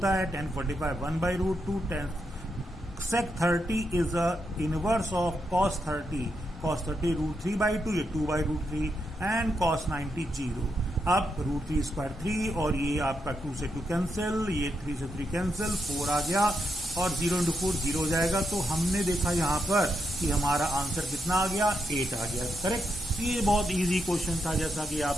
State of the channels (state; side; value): normal; both; correlation 0.83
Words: है, tan 45 1/√2, tan sec 30 is a inverse of cos 30, cos 30 √3/2, ये 2/√3 एंड cos 90 0। अब √3 स्क्वायर 3 और ये आपका 2 से 2 कैंसिल, ये 3 से 3 कैंसिल, 4 आ गया और 0 × 4 0 हो जाएगा। तो हमने देखा यहाँ पर कि हमारा आंसर कितना आ गया, 8 आ गया। करेक्ट? ये बहुत इजी क्वेश्चन था, जैसा कि